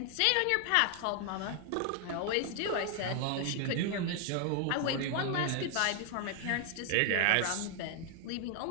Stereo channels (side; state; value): both; different; correlation 0.00